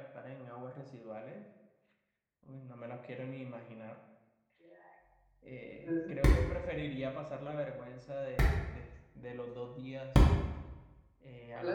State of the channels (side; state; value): both; identical; correlation 1.00